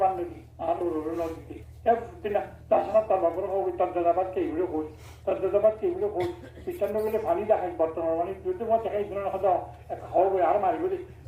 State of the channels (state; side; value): identical; both; correlation 1.00